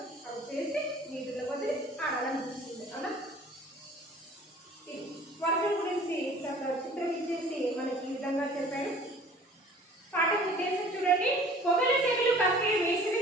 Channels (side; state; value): both; normal; correlation 0.49